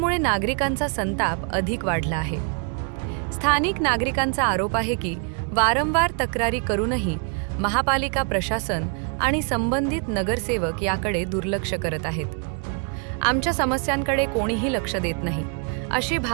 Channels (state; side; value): quieter; left; 39.7 dB